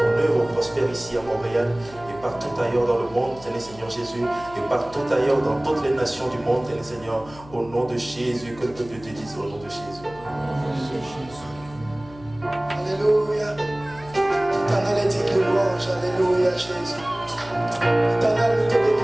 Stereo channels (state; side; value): noise; left; hum, 20 dB below the sound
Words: œuvre prospère ici à Montréal et partout ailleurs dans le monde, Seigneur Jésus, et partout ailleurs dans toutes les nations du monde, Seigneur, au nom de Jésus, que le peuple te dise au nom de Jésus. Alléluia. Éternel est digne de louange. Alléluia, Jésus. Éternel, nous te